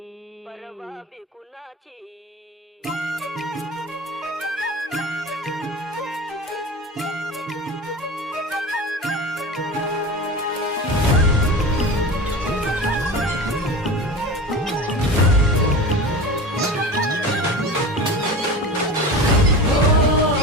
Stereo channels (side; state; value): both; normal; correlation 0.30